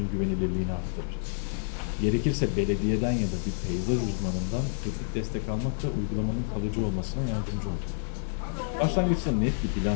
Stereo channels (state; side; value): silent; right; 59 dB below the other